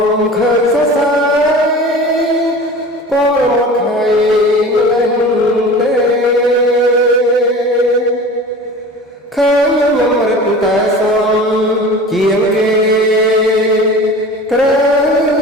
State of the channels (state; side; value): normal; both; correlation 0.38